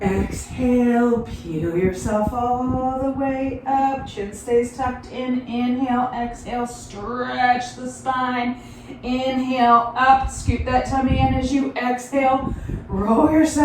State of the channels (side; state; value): both; identical; correlation 1.00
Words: Exhale, peel yourself all the way up. Chin stays tucked in. Inhale, exhale, stretch the spine. Inhale, up, scoop that tummy in as you exhale. Roll